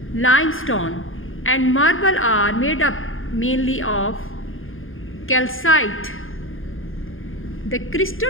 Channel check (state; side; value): late; right; 0.59 ms